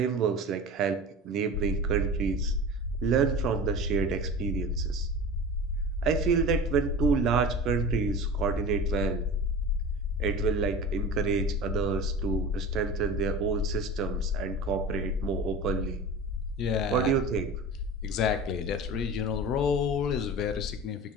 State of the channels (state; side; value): normal; both; correlation 0.33